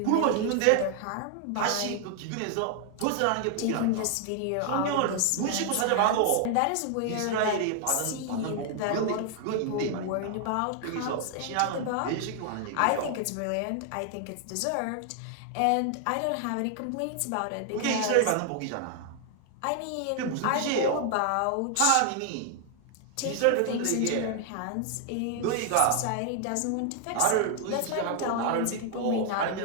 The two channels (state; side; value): different; both; correlation 0.00